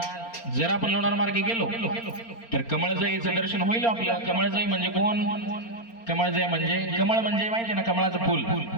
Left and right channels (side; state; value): right; late; 4.3 ms